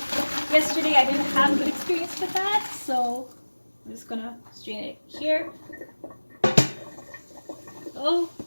yesterday I didn't have a good experience with that, so I'm just going to strain it here. Oh,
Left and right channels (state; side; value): inverted; both; correlation -1.00